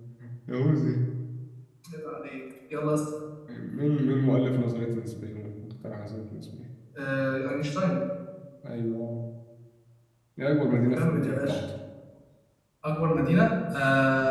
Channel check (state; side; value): identical; both; correlation 1.00